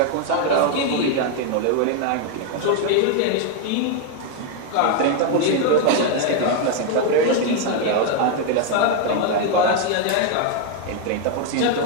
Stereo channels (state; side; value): different; both; correlation 0.01